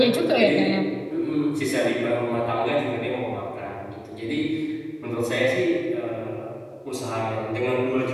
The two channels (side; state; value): both; identical; correlation 1.00